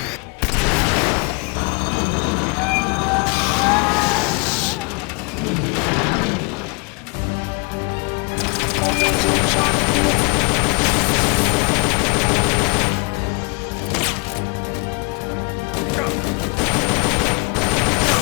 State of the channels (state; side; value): quieter; right; 32.4 dB